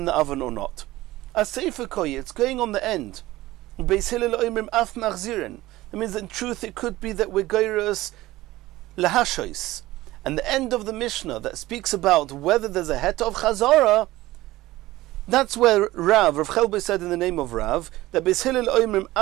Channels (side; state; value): left; quieter; 17.5 dB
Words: the oven or not? A sefer koi, it's going on the end. Beis Hillel oimrim af machzirin. That means in truth it could be that we're goyrus lahashois. And the end of the Mishnah that speaks about whether there's a het of chazara, that's where Rav Chelboy said in the name of Rav, that Beis Hillel oimrim